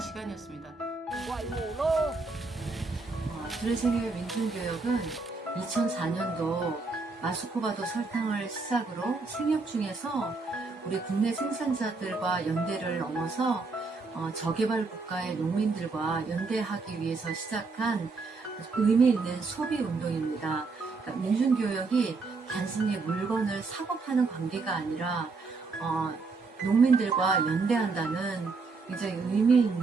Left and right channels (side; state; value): left; quieter; 4.1 dB